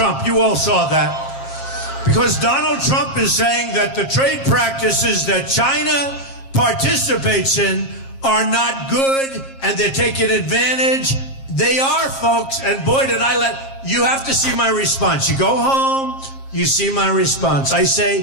You all saw that. Because Donald Trump is saying that the trade practices that China participates in are not good and they're taking advantage. They are, folks. And boy, did I you have to see my response. You go home, you see my response. I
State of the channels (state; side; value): late; right; 7.4 ms